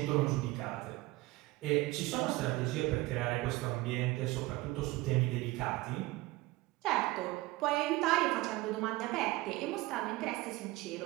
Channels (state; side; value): quieter; left; 19.7 dB